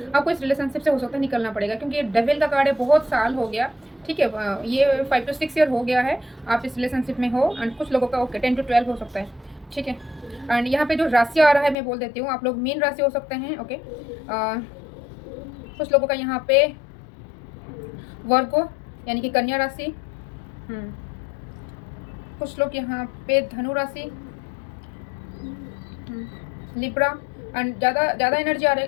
आपको इस रिलेशनशिप से हो सकता है निकलना पड़ेगा, क्योंकि ये डेविल का कार्ड है, बहुत साल हो गया, ठीक है। ये 5 to 6 ईयर हो गया है आप इस रिलेशनशिप में हो। एंड कुछ लोगों का ओके 10 to 12 हो सकता है, ठीक है। एंड यहाँ पे जो राशि आ रहा है मैं बोल देती हूँ, आप लोग मीन राशि हो सकते हैं, ओके। कुछ लोगों का यहाँ पे वर्गो यानी कि कन्या राशि, कुछ लोग यहाँ पे धनु राशि, लिब्रा एंड ज़्यादा एनर्जी आ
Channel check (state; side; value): drops out; right; at 11.8 s